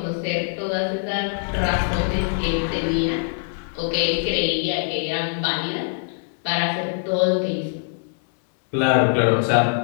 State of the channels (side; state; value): right; silent; 64 dB below the other